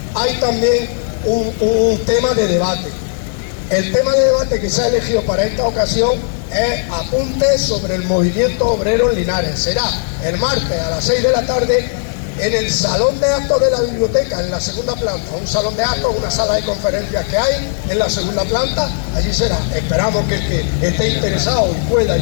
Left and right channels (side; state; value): right; silent; digital silence